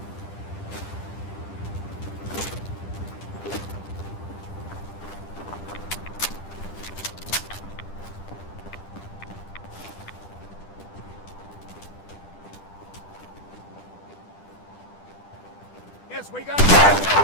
Yes, we got it.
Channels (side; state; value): right; late; 10 ms